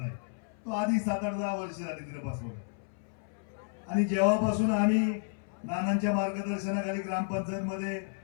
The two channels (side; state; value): right; silent; 57 dB below the other